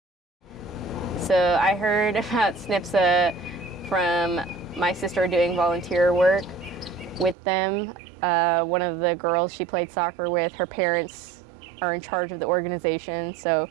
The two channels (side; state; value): left; drops out; at 7.4 s